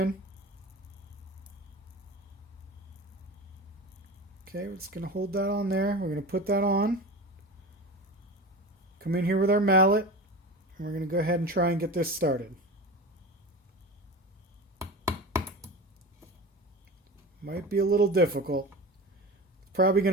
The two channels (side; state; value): both; normal; correlation 0.30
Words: Okay, we're just going to hold that on there. We're going to put that on. Come in here with our mallet, and we're going to go ahead and try and get this started. Might be a little difficult. It's probably